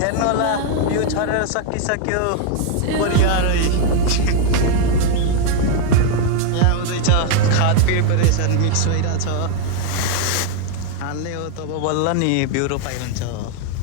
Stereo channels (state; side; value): different; both; correlation 0.01